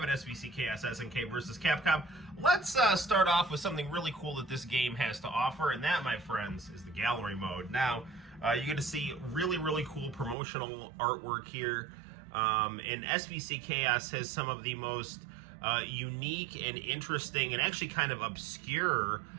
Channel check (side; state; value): left; drops out; at 10.4 s